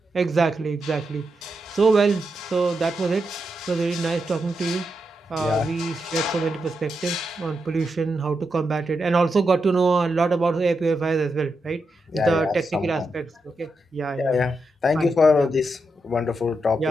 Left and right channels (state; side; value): normal; both; correlation 0.85